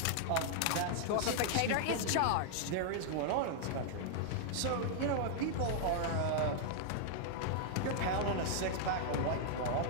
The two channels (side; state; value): both; different; correlation -0.01